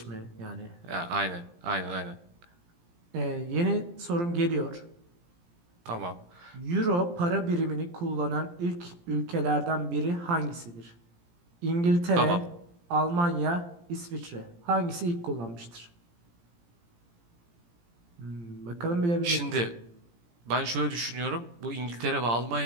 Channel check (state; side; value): late; left; 17 ms